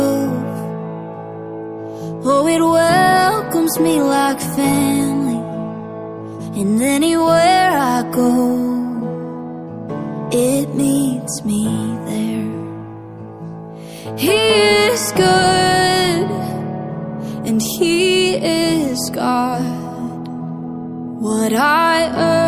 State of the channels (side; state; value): both; identical; correlation 1.00